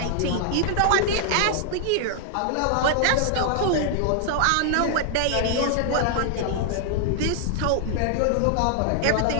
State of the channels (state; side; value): different; both; correlation 0.00